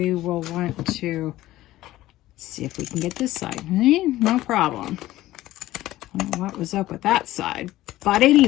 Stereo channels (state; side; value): quieter; right; 15.8 dB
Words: will want to see if we can get this side. No problem. I don't know what was up with that side, but